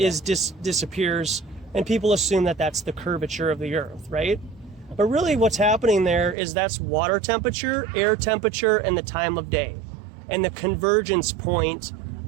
and people assume that that's the curvature of the Earth, right? But really what's happening there is that's water temperature, air temperature, and the time of day and the convergence point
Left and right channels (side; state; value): left; drops out; at 6.4 s